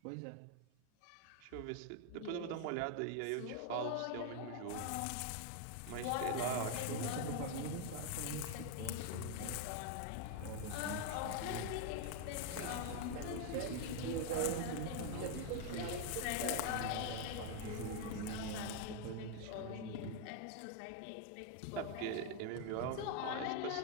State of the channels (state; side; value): different; both; correlation 0.01